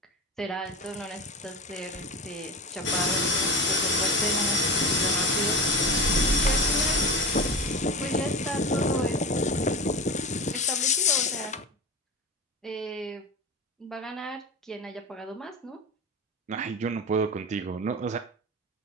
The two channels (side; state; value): both; normal; correlation 0.28